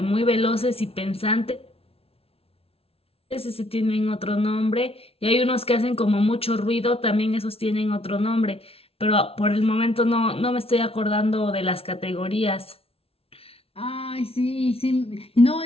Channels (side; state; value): right; late; 0.28 ms